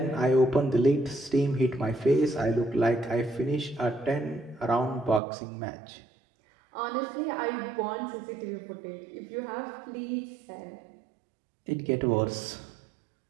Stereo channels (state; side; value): drops out; left; at 5.2 s